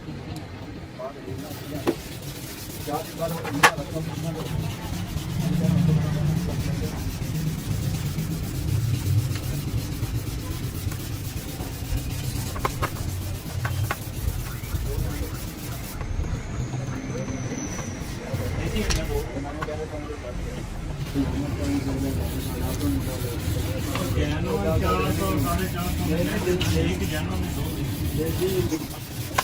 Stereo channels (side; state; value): both; identical; correlation 1.00